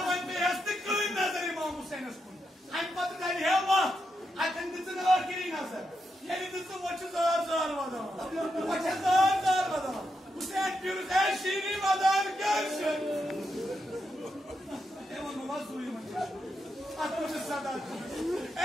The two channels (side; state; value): both; normal; correlation 0.84